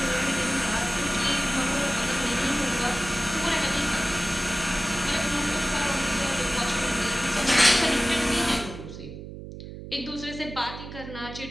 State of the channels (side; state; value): right; noise; hum, 11 dB below the sound